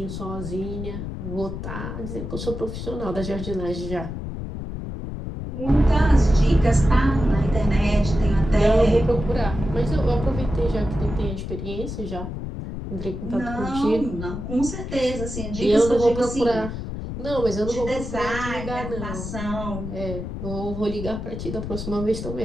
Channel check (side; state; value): left; noise; rumble, 7 dB below the sound